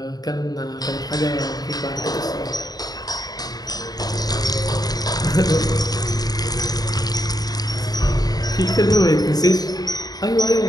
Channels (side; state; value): right; late; 0.19 ms